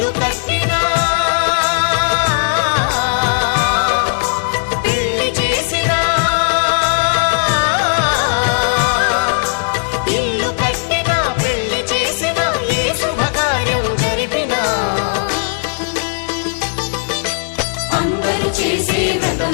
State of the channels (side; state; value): right; silent; digital silence